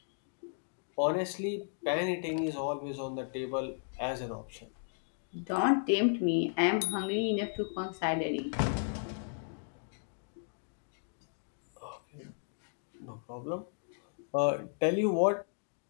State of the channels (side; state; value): right; silent; digital silence